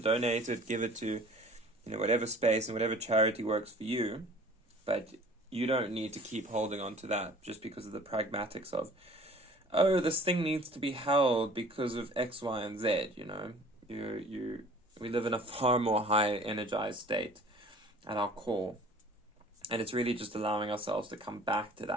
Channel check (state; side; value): normal; both; correlation 0.48